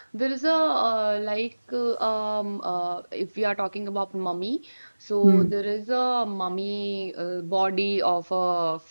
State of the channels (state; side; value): inverted; both; correlation -1.00